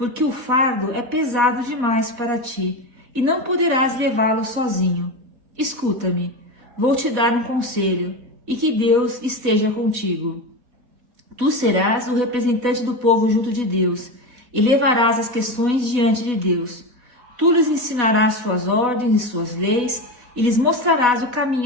o fardo é pesado demais para ti, e não poderás levá-lo sozinho. Escuta-me, vou te dar um conselho, e que Deus esteja contigo. Tu serás o representante do povo junto de Deus, e levarás as questões diante de Deus. Tu lhes ensinarás suas ordens e suas leis, e lhes mostrarás o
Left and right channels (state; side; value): late; left; 4.1 ms